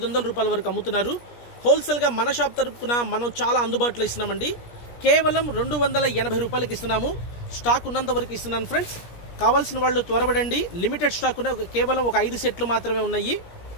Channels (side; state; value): right; late; 17 ms